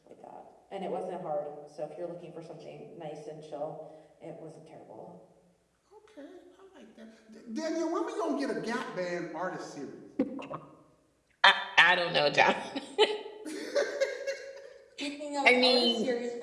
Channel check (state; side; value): identical; both; correlation 1.00